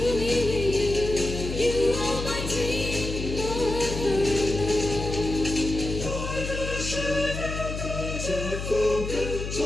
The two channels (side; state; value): left; noise; hum, 5 dB below the sound